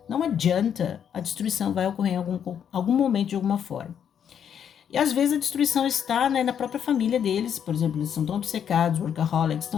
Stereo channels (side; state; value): right; quieter; 8.5 dB